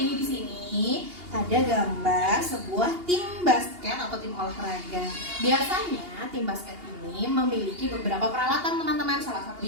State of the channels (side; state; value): left; late; 2.8 ms